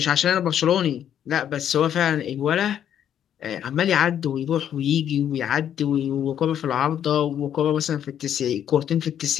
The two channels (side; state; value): right; quieter; 9.8 dB